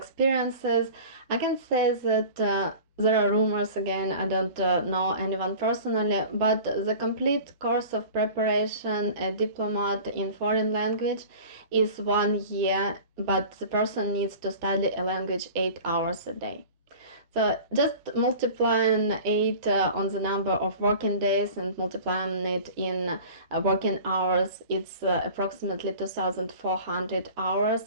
I can say that there are rumors again, I don't know anyone personally, but the complete course of preparation, a diplomat in foreign language, is 1 year, but the person needs to study a language 8 hours a day. So just multiplying it on the number of working days and multiplying it in working hours, it's approximately 2,400 hours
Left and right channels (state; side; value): inverted; both; correlation -0.40